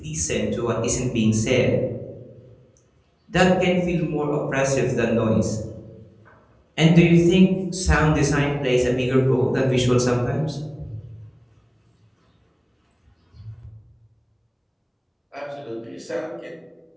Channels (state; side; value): identical; both; correlation 1.00